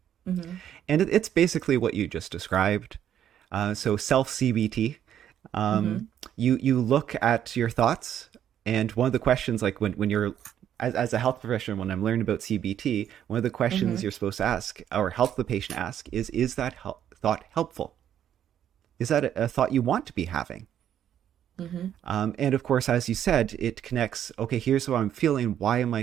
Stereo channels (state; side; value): quieter; left; 10.1 dB